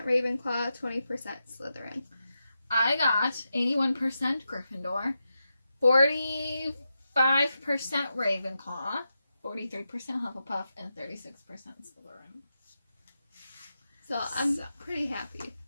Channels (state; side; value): inverted; both; correlation -0.88